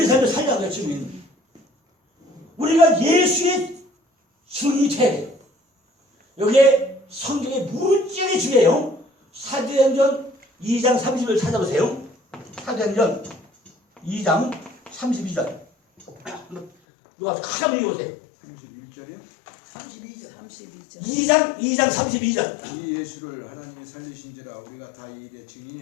삶을 살려는 거야. 증인. 우리가 예수의 증인이 돼야 돼요. 여기에 성경에 무지하게 중요해요. 사도행전 2장 30을 찾아보세요. 사도행전 2장 32절. 누가 큰 한번 읽어보세요. 31절이요? 32절. 2장 32절. 이 예수를 하나님이 살리신지라 우리가 다 이 일의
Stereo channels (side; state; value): right; drops out; at 16.7 s